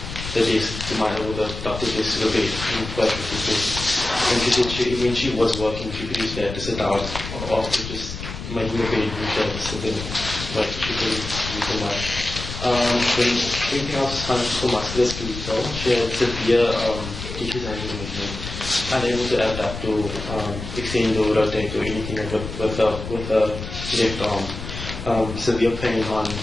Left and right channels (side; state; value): left; noise; rumble, 8 dB below the sound